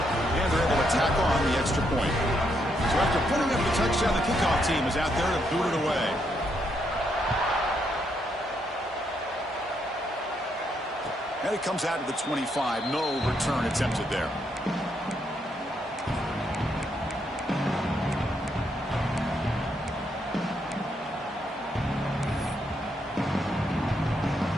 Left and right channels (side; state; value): both; normal; correlation 0.77